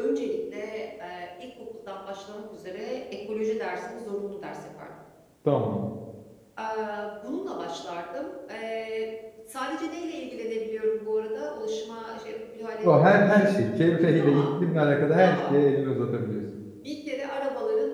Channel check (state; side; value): identical; both; correlation 1.00